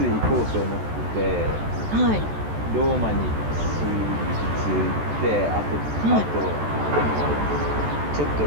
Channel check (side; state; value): left; late; 14 ms